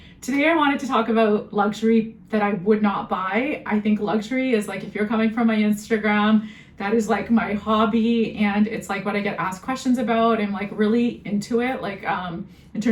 Today I wanted to talk about luxury that I would not buy. I think luxury is if you're coming from my Instagram, that is my hobby, and it's what I get asked questions about. I'm really into it, in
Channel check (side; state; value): both; identical; correlation 1.00